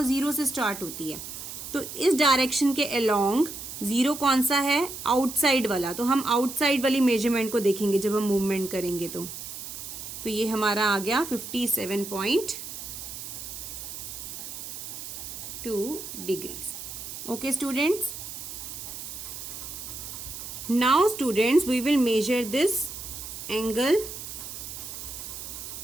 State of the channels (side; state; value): right; noise; hiss, 9 dB below the sound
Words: 0 से स्टार्ट होती है. तो इस डायरेक्शन के अलोंग 0 कौन सा है, आउटसाइड वाला. तो हम आउटसाइड वाली मेजरमेंट को देखेंगे जब हम मूवमेंट करेंगे. तो ये हमारा आ गया 57.2 degrees. Okay students, now students, we will measure this angle.